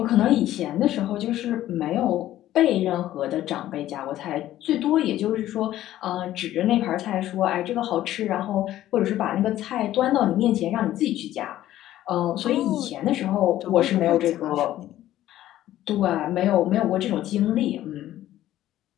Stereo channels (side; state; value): right; quieter; 13.6 dB